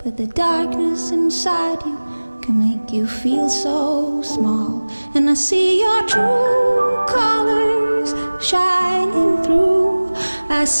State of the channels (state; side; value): inverted; both; correlation -1.00